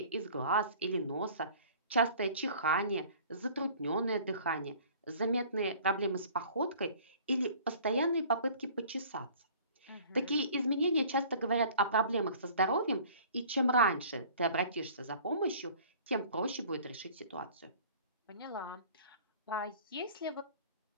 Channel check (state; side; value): inverted; both; correlation -0.49